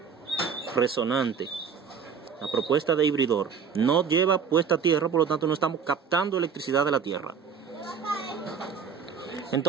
resonante. La propuesta de hibridor no lleva puesta tierra, por lo tanto no estamos captando electricidad de la tierra.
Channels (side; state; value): left; quieter; 6.5 dB